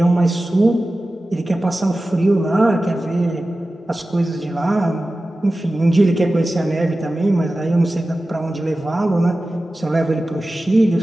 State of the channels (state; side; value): normal; both; correlation 0.95